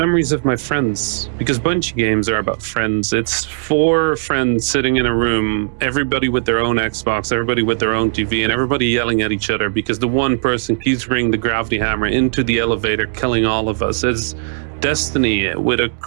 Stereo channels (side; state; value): left; silent; digital silence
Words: of my friends, because Bungie games are about friends. It's 4 friends sitting in a room, everybody with their own Xbox, everybody with their own TV, and everybody yelling at each other because the one person keeps bringing the gravity hammer into the elevator, killing all of us. It's Destiny with a